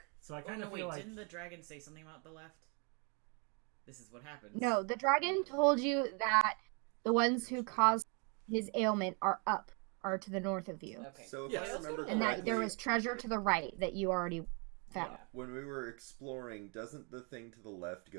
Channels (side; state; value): left; quieter; 35.2 dB